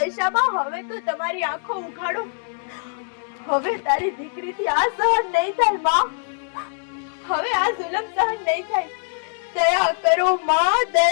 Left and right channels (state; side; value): silent; right; digital silence